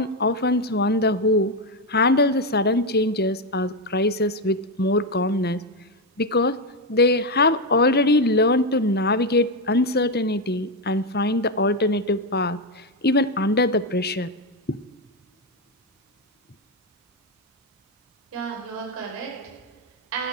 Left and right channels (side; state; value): both; normal; correlation 0.07